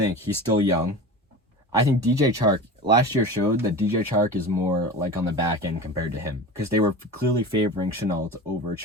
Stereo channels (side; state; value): both; normal; correlation 0.32